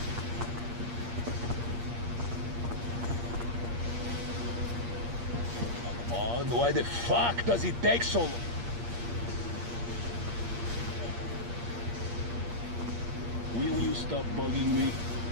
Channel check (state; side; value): late; left; 8.5 ms